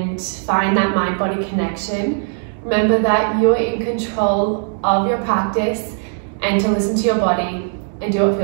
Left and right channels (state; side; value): silent; left; digital silence